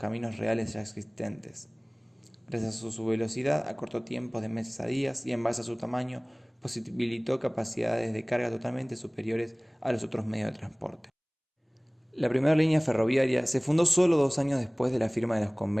reales ya existentes. Gracias a su velocidad, acortó tiempos de meses a días y en base a su tamaño, posibilitó capacidades de carga totalmente superiores a los otros medios de transporte. La primera línea ferroviaria se fundó solo 2 años después de la firma de los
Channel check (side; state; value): both; identical; correlation 1.00